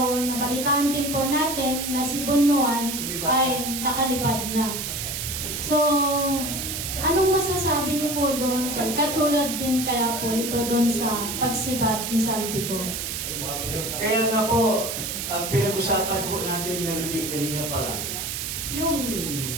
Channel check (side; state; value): right; noise; hiss, 4 dB below the sound